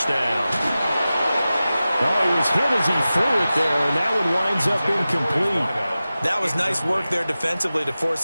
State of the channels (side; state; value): both; inverted; correlation -0.95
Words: down. Oh, he was hit as he threw it there, and that one winds up incomplete. That was nice work there defensively to